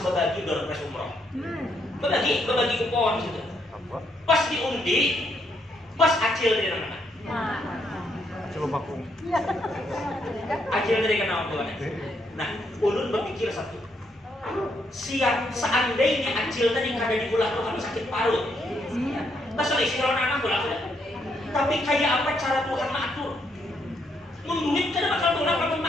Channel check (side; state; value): both; normal; correlation 0.75